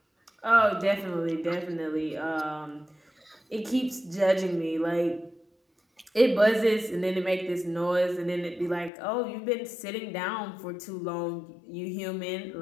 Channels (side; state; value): right; drops out; at 8.9 s